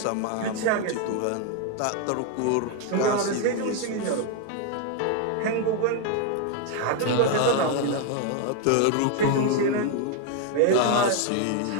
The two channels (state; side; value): different; both; correlation 0.01